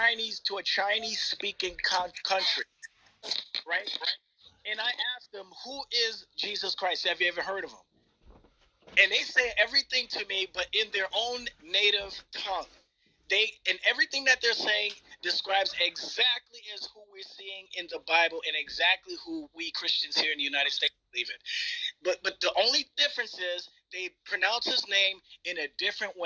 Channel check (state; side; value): identical; both; correlation 1.00